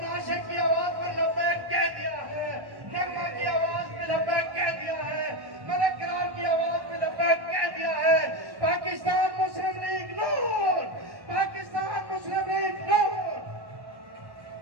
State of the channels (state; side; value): late; left; 1.1 ms